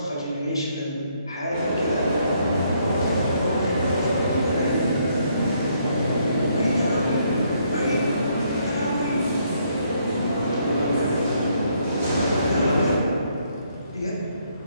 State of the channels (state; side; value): inverted; both; correlation -0.71